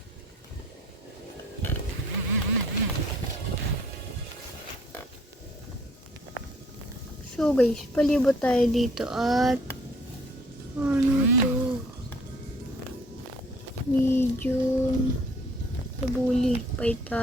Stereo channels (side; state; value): both; normal; correlation 0.59